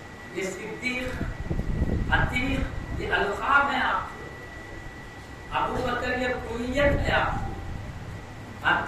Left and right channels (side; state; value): both; identical; correlation 1.00